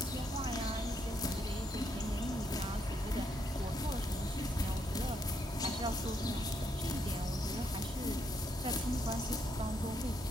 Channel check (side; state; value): both; normal; correlation 0.76